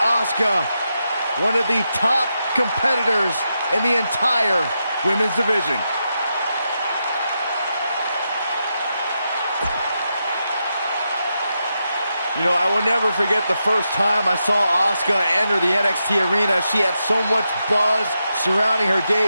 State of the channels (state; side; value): inverted; both; correlation -0.86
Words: one of the top competitors in the entire women's division. You know, I will never forget the first time I saw Asuka enter the NXT arena. She had so much buzz surrounding her